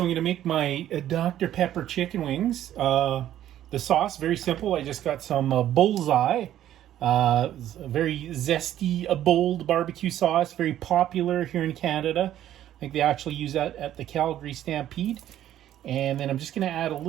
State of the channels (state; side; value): quieter; left; 12.0 dB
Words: I'm going to make my Dr. Pepper chicken wings. The sauce, very simple. I just got some bullseye, very zesty, bold barbecue sauce, very popular here in Canada. I think they actually use that at the Calgary Stampede. And then I'm just going to add a